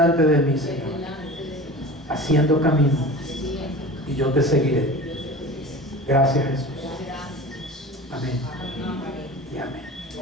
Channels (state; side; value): normal; both; correlation 0.36